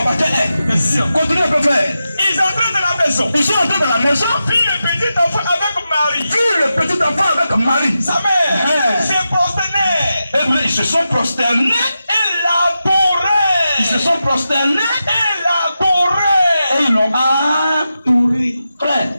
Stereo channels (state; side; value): inverted; both; correlation -0.90